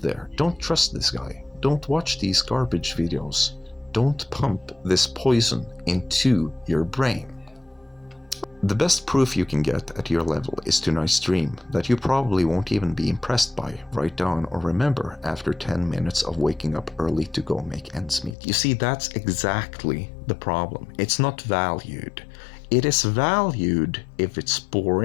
there, don't trust this guy. Don't watch these garbage videos. Don't pump this poison into your brain. The best proof you can get at your level is tonight's dream that you probably won't even be impressed by, write down, or remember after 10 minutes of waking up early to go make ends meet. You see, that's exactly the problem. It's not valued. It is valued if it's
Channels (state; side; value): drops out; right; at 18.4 s